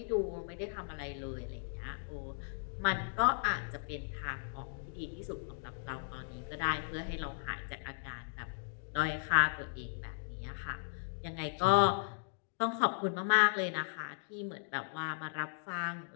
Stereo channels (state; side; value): silent; right; digital silence